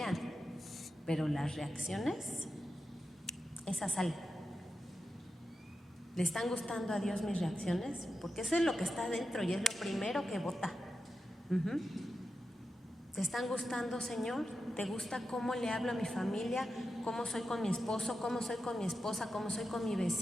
pero las reacciones, esas salen. ¿Le están gustando a Dios mis reacciones? Porque eso es lo que está dentro y es lo primero que vota. ¿Te están gustando, Señor? ¿Te gusta cómo le hablo a mi familia? ¿Cómo soy con mi esposo? ¿Cómo soy con mi esposa? ¿Cómo soy con mi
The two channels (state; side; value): normal; both; correlation 0.90